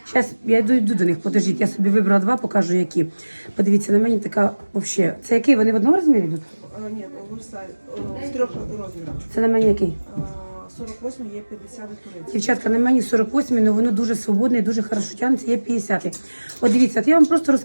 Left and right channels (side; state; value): both; inverted; correlation -1.00